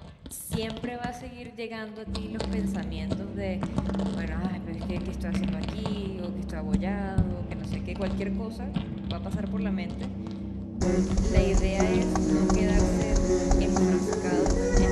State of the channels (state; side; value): identical; both; correlation 1.00